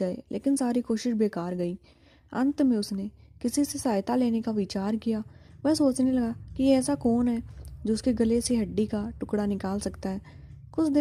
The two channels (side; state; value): both; identical; correlation 1.00